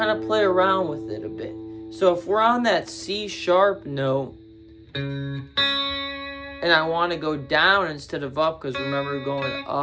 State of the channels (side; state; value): both; identical; correlation 1.00